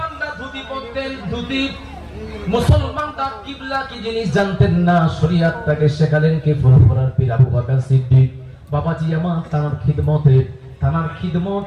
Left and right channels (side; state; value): both; identical; correlation 1.00